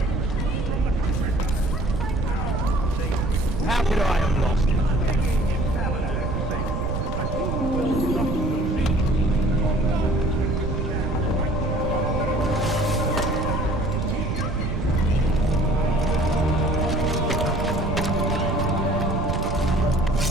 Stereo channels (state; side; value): noise; right; rumble, 2 dB below the sound